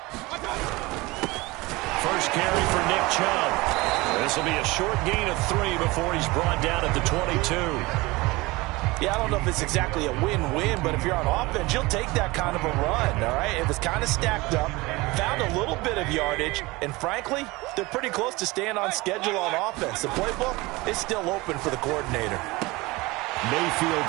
First carry for Nick Chubb. This will be a short gain of 3 before he's brought down at the 22. Yeah, I don't know if it's exactly a win-win, but if you're on offense, you'll take that kind of a run, all right? It was kind of stacked up, found a little bit of yardage, and frankly, they're pretty close to staying on schedule on offense. The playbook is still open for the coordinator.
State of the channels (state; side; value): quieter; left; 22.3 dB